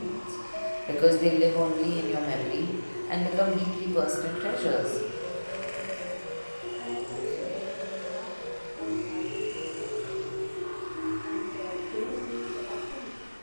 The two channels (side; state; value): both; inverted; correlation -1.00